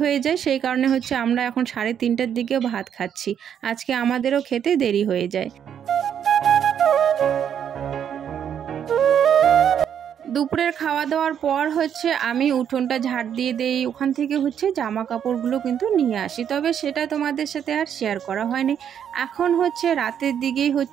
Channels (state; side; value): quieter; left; 8.8 dB